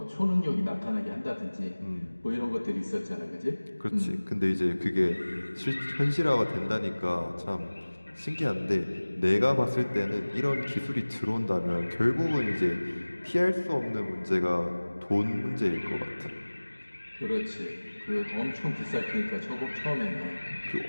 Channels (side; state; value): both; inverted; correlation -1.00